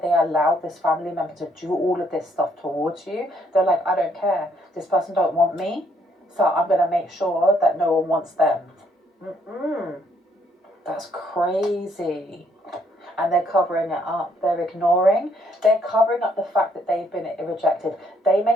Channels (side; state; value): both; normal; correlation 0.69